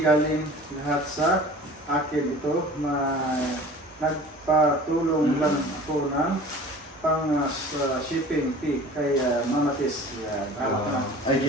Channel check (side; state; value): both; normal; correlation 0.43